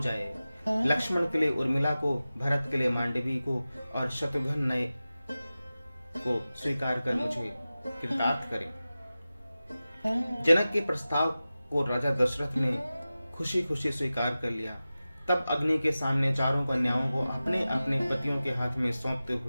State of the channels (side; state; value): both; inverted; correlation -0.95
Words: लक्ष्मण के लिए उर्मिला को, भरत के लिए मांडवी को और शत्रुघ्न नए को स्वीकार कर मुझे कृतार्थ करें। जनक के प्रस्ताव को राजा दशरथ ने खुशी खुशी स्वीकार कर लिया। तब अग्नि के सामने चारों कन्याओं को अपने अपने पतियों के हाथ में सौंपते